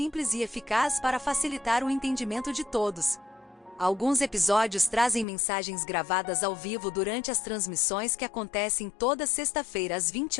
e eficaz para facilitar o entendimento de todos. Alguns episódios trazem mensagens gravadas ao vivo durante as transmissões que acontecem toda sexta-feira às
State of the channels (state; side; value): drops out; right; at 5.2 s